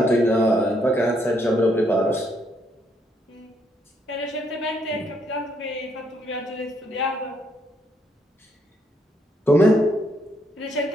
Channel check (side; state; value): both; normal; correlation 0.73